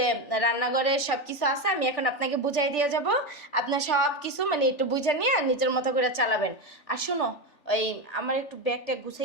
রান্নাঘরে সব কিছু আছে, আমি এখন আপনাকে বুঝাই দিয়ে যাব। আপনার সব কিছু মানে একটু বুঝে নিয়ে নিজের মতো করে চালাবেন। আর শোনো, ওই আমার একটু ব্যাগটা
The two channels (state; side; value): late; right; 3.4 ms